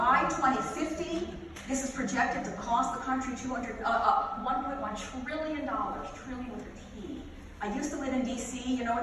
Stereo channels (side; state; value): both; identical; correlation 1.00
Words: 2050, this is projected to cost the country $1.1 trillion, trillion with a T. I used to live in D.C., you know